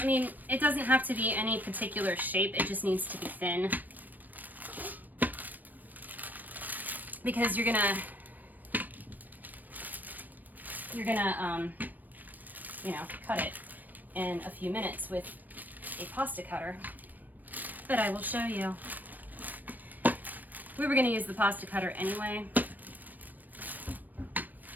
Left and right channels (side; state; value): left; late; 0.087 ms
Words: mean, it doesn't have to be any particular shape, it just needs to be thin. Because you're gonna, you know, cut it in a few minutes with a pasta cutter. But I will show you. We were gonna use the pasta cutter anyway,